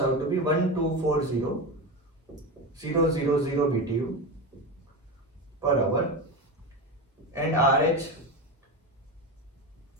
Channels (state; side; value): normal; both; correlation 0.20